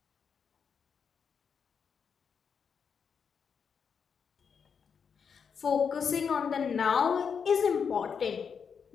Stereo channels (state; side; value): quieter; right; 6.5 dB